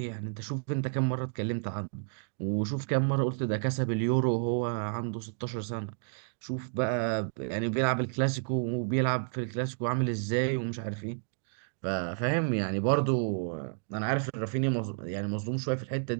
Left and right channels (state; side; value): silent; left; digital silence